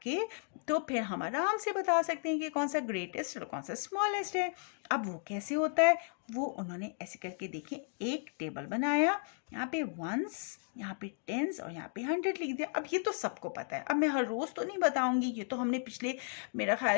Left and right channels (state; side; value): silent; right; 55 dB below the other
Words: के, तो फिर हम आराम से बता सकते हैं कि कौन सा ग्रेटेस्ट और कौन सा स्मॉलेस्ट है। अब वो कैसे होता है, वो उन्होंने ऐसे करके देखें, एक टेबल बनाया, यहाँ पे वंस, यहाँ पे टेंस और यहाँ पे 100 लिख दिया। अब ये तो सबको पता है, अब मैं हर रोज तो नहीं बताऊंगी, ये तो हमने पिछले मेरा ख्याल